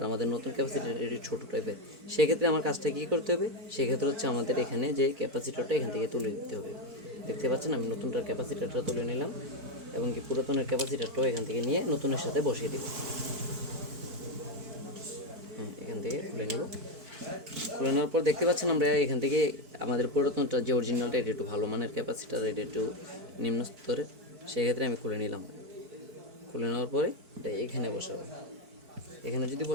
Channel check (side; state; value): left; late; 4.5 ms